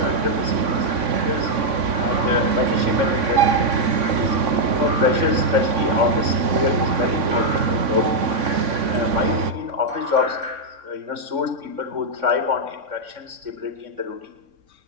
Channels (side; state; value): left; late; 3.6 ms